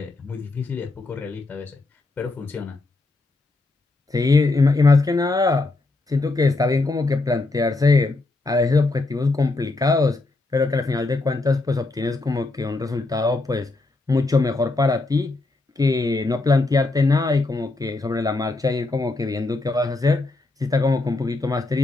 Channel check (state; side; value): quieter; right; 3.2 dB